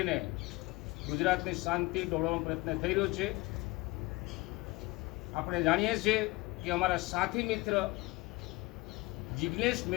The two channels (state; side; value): quieter; right; 22.2 dB